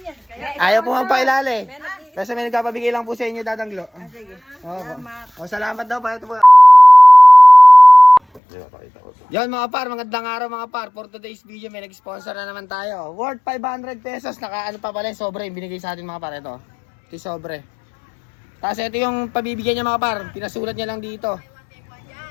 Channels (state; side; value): drops out; right; at 8.4 s